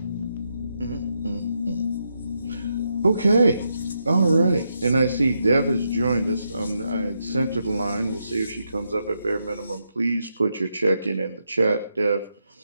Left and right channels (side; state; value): both; inverted; correlation -0.82